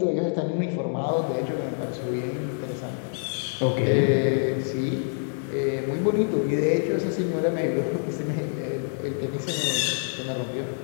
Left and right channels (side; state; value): right; silent; digital silence